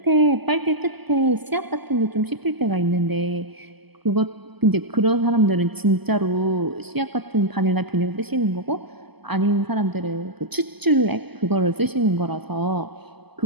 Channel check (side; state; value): left; late; 0.98 ms